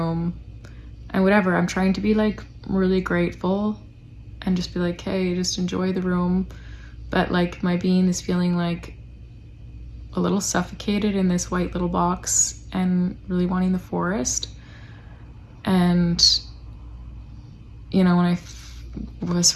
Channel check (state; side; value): identical; both; correlation 1.00